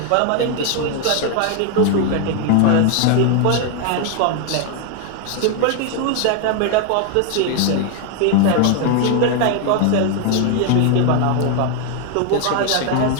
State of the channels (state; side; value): different; both; correlation 0.01